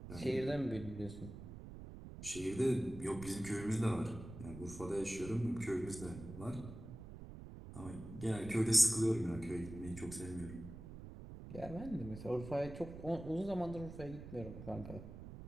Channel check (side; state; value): right; noise; rumble, 12 dB below the sound